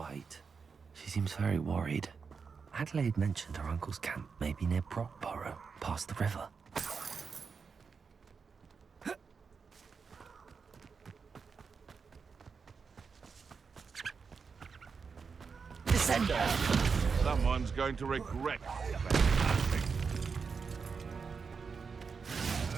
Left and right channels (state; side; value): quieter; left; 5.4 dB